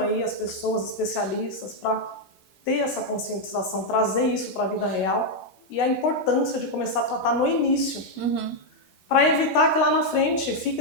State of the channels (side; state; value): right; late; 14 ms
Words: as pessoas, especialistas, para ter essa conscientização, trazer isso para a vida real e a importância de começar a tratar no início, para evitar que lá na frente